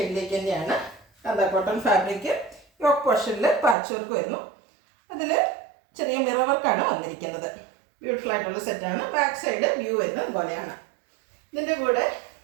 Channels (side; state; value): left; drops out; at 3.8 s